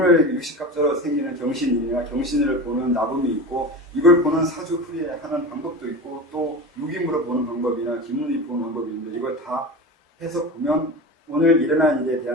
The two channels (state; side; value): normal; both; correlation 0.28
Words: 육식갑자로 생기는 경신이나 경신을 보는 나범이 있고 이걸 보는 사주풀이하는 방법도 있고 또 육임으로 보는 방법이나 기문이 보는 방법이 있는데 이걸 다 해서 보면 오늘 일어난 일에